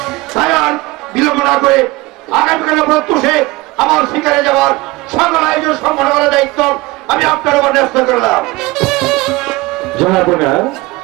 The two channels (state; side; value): quieter; left; 21.4 dB